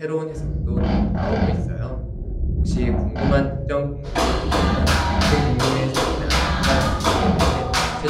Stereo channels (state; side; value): identical; both; correlation 1.00